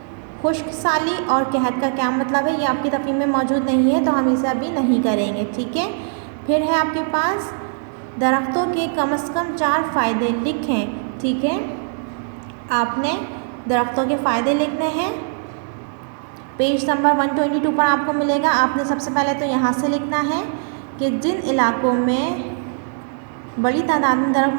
खुश्क साली और कहत का क्या मतलब है? ये आपकी तफहीम में मौजूद नहीं है तो हम इसे अभी नहीं करेंगे। ठीक है, फिर है आपके पास दरख्तों के कम से कम 4 फ़ायदे लिखें। ठीक है, आपने दरख्तों के फ़ायदे लिखने हैं, पेज नंबर 122 पर आपको मिलेगा। आपने सबसे पहले तो यहाँ से लिखना है कि जिन इलाकों में बड़ी तादाद में दरख्त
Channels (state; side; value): silent; left; digital silence